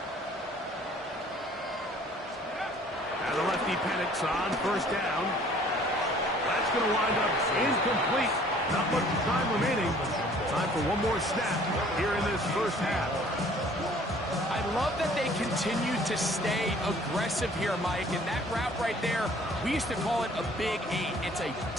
On first down. That's going to wind up incomplete. Not much time remaining. Time for one more snap here in this first half. I love that they continue to stay aggressive here, Mike. And that route right there, we used to call it a big 8. It's a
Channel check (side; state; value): both; normal; correlation 0.55